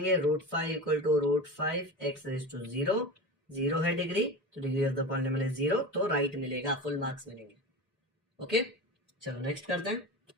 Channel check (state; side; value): normal; both; correlation 0.28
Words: √5 = √5x⁻0, 0 है डिग्री, तो degree of the polynomial is 0, तो राइट मिलेगा, फुल मार्क्स मिलेंगे। ओके, चलो नेक्स्ट करते हैं।